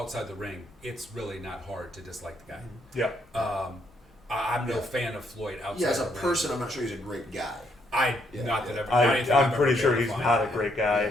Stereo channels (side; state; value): both; normal; correlation 0.73